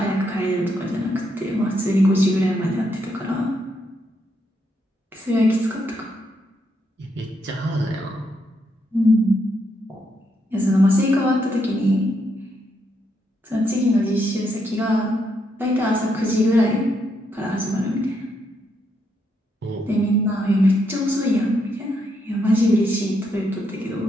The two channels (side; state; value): both; normal; correlation 0.78